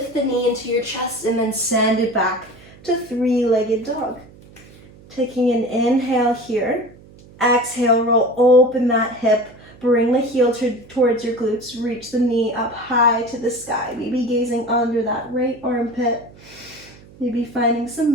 the knee into your chest and then send it back to three-legged dog. Taking an inhale here. Exhale, roll open that hip. Bring the heel towards your glutes. Reach the knee up high to the sky. Maybe gazing under that right armpit. Maybe finding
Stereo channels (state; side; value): noise; right; hum, 23 dB below the sound